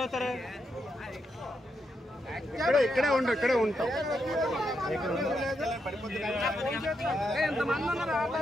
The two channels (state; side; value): normal; both; correlation 0.82